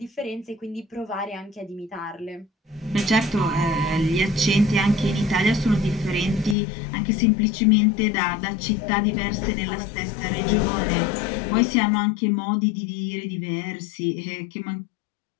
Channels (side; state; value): right; drops out; at 6.6 s